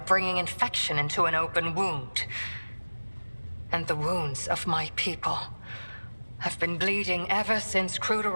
infection into an open wound. And the wounds of my people have been bleeding ever since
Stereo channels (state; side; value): inverted; both; correlation -1.00